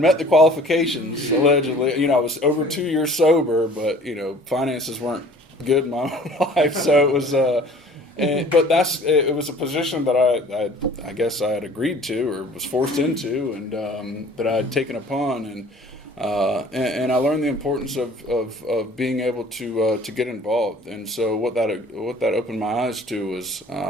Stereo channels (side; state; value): both; normal; correlation 0.49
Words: the qualifications allegedly. You know, I was over 2 years sober, but you know, finances weren't good in my own life, so it was. But it was a position that I guess I had agreed to or was forced into, and that I had taken upon, and I learned the importance of being able to get involved. And so what that opened my eyes to was